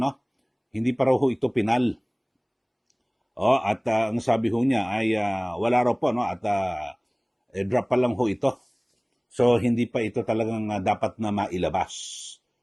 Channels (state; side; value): identical; both; correlation 1.00